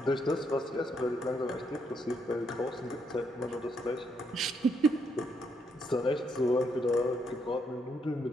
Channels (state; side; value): normal; both; correlation 0.75